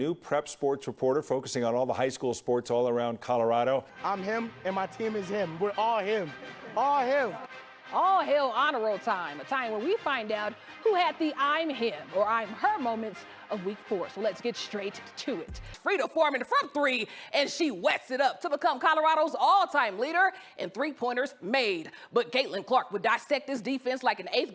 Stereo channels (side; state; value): both; identical; correlation 1.00